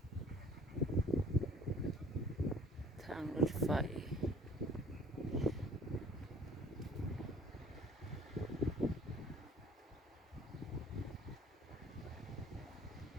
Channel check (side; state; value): both; normal; correlation 0.51